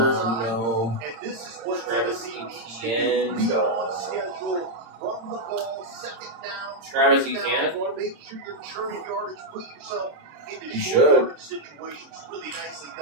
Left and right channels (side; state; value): left; late; 26 ms